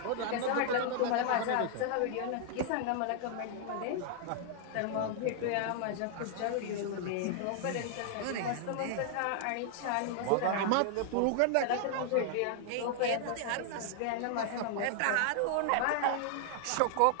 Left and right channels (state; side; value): different; both; correlation 0.00